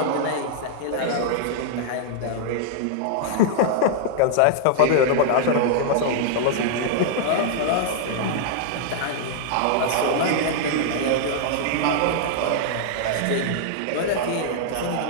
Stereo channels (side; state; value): both; different; correlation -0.01